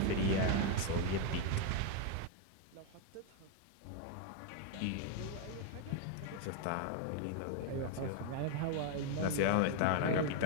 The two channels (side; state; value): both; different; correlation 0.01